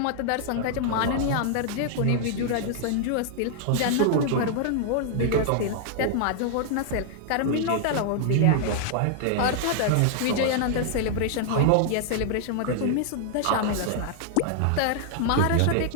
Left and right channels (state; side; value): different; both; correlation 0.00